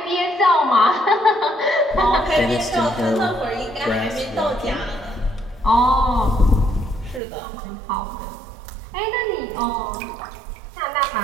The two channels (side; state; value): left; drops out; at 7.2 s